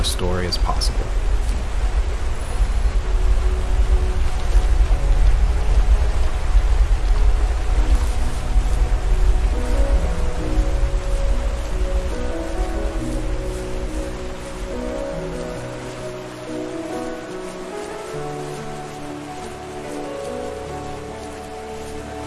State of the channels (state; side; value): identical; both; correlation 1.00